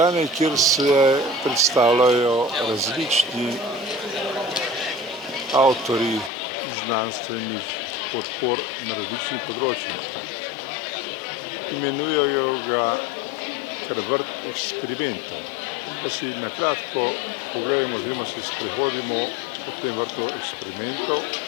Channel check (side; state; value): right; drops out; at 6.3 s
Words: kjer se predstavljajo različni avtorji znanstvenih podpor na različnih področjih. Imenujejo ga kar vrt eksperimentov. Pa si na kratko pogledamo oziroma se sprehodimo po tem vrtu eksperimentov.